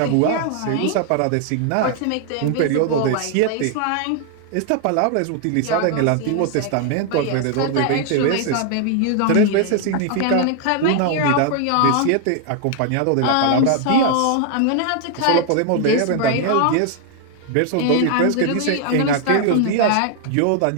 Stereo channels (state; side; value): different; both; correlation 0.00